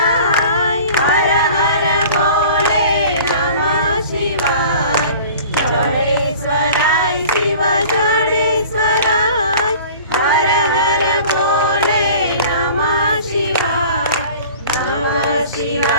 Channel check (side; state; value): both; inverted; correlation -0.44